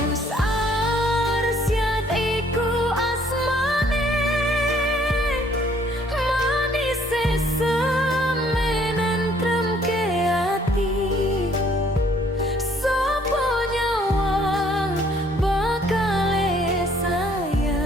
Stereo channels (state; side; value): normal; both; correlation 0.62